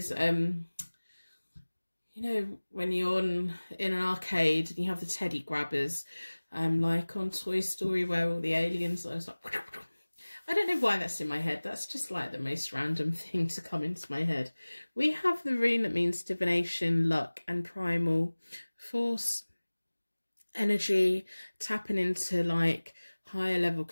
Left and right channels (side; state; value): both; inverted; correlation -1.00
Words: you know, when you're in an arcade and you have the teddy grabbers, like on Toy Story where all the aliens are like, I don't know why that's in my head. That's just like the most random thing to come into my head. We have the rune that means divination, luck and primal force, energy, tapping into like higher level